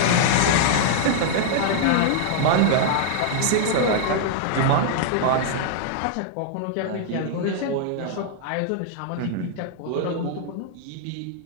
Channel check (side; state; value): both; different; correlation -0.01